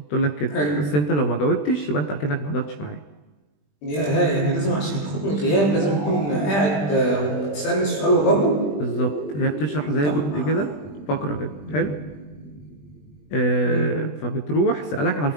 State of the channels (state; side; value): late; right; 20 ms